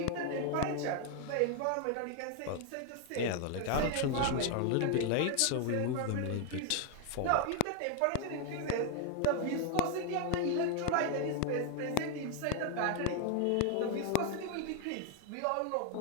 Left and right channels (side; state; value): both; different; correlation 0.00